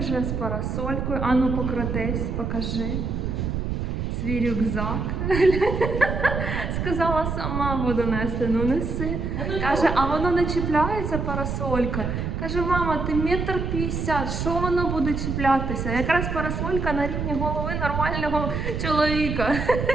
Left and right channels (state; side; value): noise; right; rumble, 2 dB below the sound